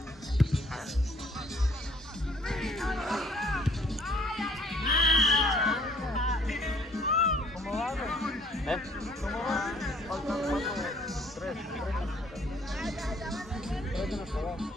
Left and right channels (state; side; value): normal; both; correlation 0.59